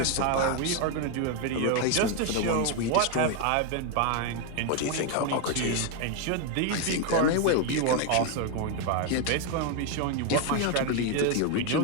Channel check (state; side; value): different; both; correlation 0.01